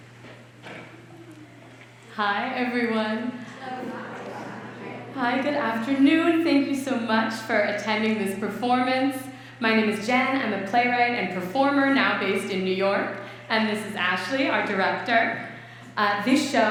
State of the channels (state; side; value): identical; both; correlation 1.00